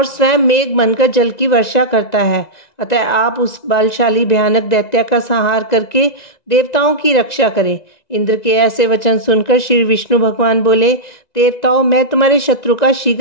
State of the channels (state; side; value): late; right; 1.9 ms